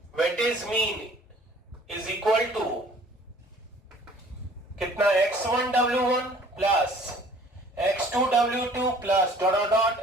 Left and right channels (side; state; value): both; normal; correlation 0.53